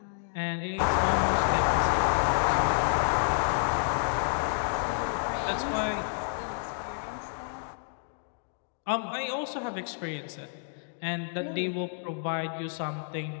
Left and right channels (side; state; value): right; silent; digital silence